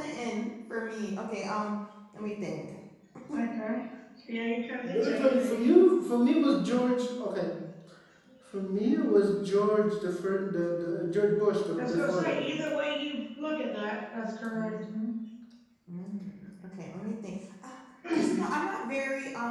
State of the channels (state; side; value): identical; both; correlation 1.00